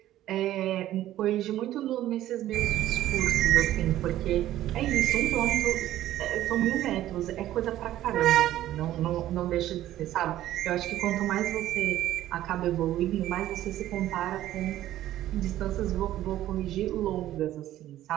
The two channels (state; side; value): quieter; left; 13.5 dB